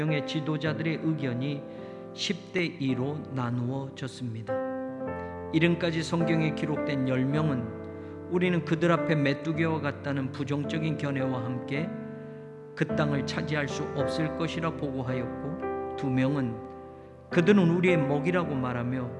지도자들의 의견이 10대 2로 나누어졌습니다. 이름까지 성경에 기록된 10명은 우리는 그들 앞에 메뚜기와 같다는 부정적인 견해와 함께 그 땅을 차지할 수 없을 것이라 보고하였고 2명은 그들은 우리의 먹이라고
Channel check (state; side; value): identical; both; correlation 1.00